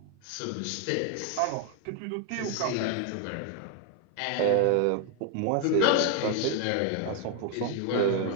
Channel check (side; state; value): both; different; correlation 0.00